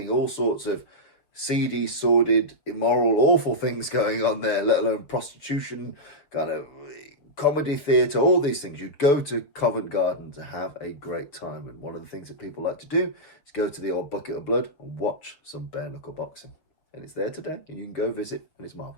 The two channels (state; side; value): late; right; 6.9 ms